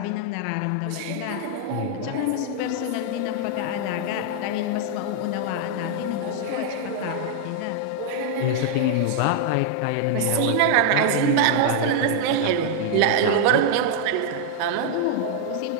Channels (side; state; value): both; different; correlation -0.01